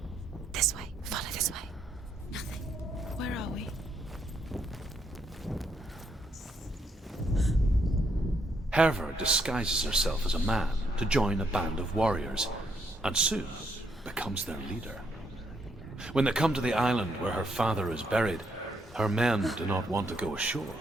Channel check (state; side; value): normal; both; correlation 0.74